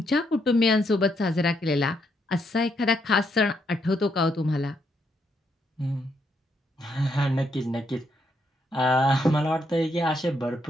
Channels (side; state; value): both; normal; correlation 0.77